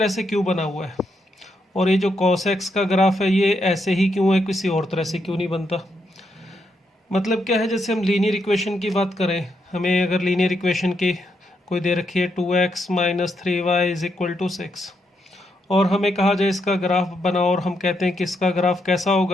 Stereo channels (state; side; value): normal; both; correlation 0.79